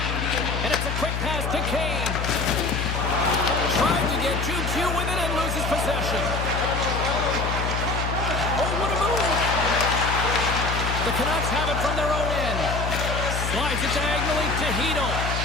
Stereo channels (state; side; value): noise; left; hum, 2 dB below the sound